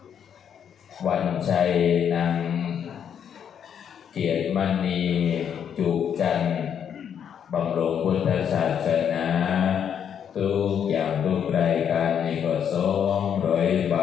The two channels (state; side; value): quieter; right; 8.3 dB